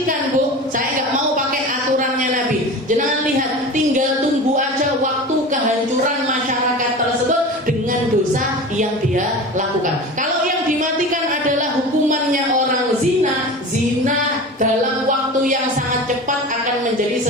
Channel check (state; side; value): normal; both; correlation 0.33